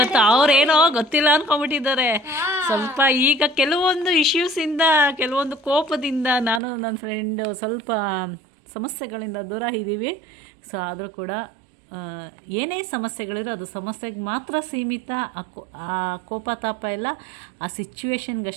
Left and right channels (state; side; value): drops out; left; at 6.6 s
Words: ಅವ್ರೇನೋ ಗೊತ್ತಿಲ್ಲ ಅನ್ಕೊಂಡ್ಬಿಟ್ಟಿದ್ದಾರೆ. ಸ್ವಲ್ಪ ಈಗ ಕೆಲವೊಂದು ಇಶ್ಯೂಸಿಂದ, ಕೆಲವೊಂದು ಕೋಪದಿಂದ ನಾನು ನನ್ನ ಫ್ರೆಂಡು ಸ್ವಲ್ಪ ಸಮಸ್ಯೆಗಳಿಂದ ದೂರ ಇದ್ದೀವಿ. ಸೊ ಆದರೂ ಕೂಡ ಏನೇ ಸಮಸ್ಯೆಗಳಿರೋ ಅದು ಸಮಸ್ಯೆಗೆ ಮಾತ್ರ ಸೀಮಿತ. ಆ ಕೋಪ ತಾಪ ಎಲ್ಲ ಆ